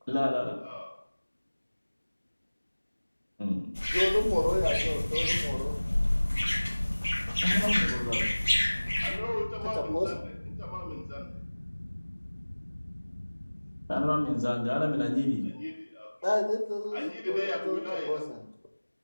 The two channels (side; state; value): both; inverted; correlation -1.00